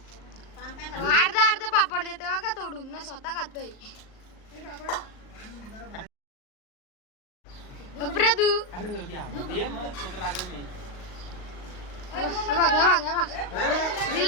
अर्ध पापड देतोय बघा तोडून ना स्वतः खातोय. प्रदू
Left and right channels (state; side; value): late; right; 38 ms